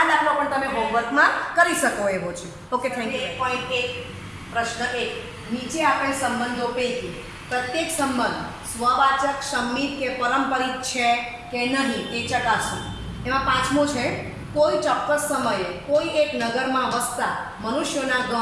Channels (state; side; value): identical; both; correlation 1.00